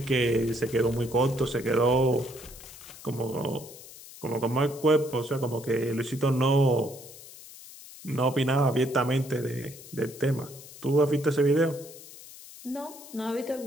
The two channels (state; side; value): noise; left; hiss, 17 dB below the sound